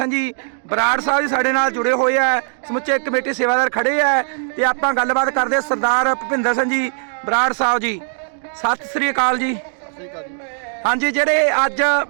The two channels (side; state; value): left; silent; digital silence